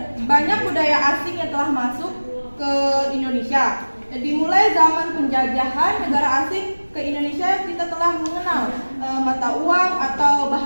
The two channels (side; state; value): both; inverted; correlation -1.00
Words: banyak budaya asing yang telah masuk ke Indonesia. Dimulai zaman penjajahan negara asing ke Indonesia, kita telah mengenal mata uang atau